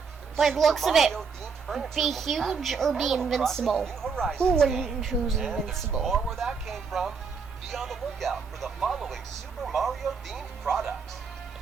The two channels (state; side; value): quieter; left; 5.5 dB